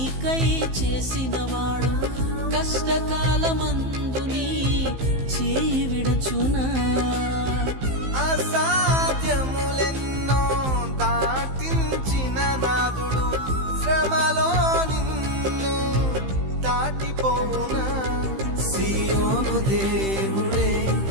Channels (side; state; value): left; late; 15 ms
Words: చేసినవాడు కష్టకాలమందు నీ చేయి విడచునా. అసాధ్యములెన్నో దాటించిన నాదుడు శ్రమలో నిన్ను దాటిపోవునా. సియోను దేవుడే